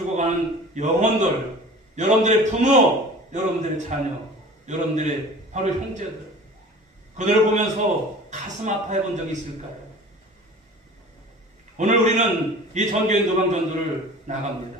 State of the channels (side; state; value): both; normal; correlation 0.41